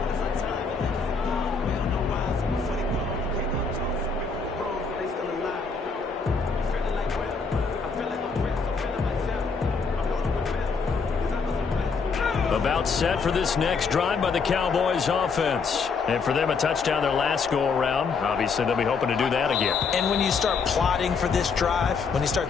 About set for this next drive by the Cowboys offense. And for them, a touchdown their last go-around. Obviously, they'll be hoping to do that again. And when you start plotting for this drive, when you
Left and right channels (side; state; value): right; quieter; 5.0 dB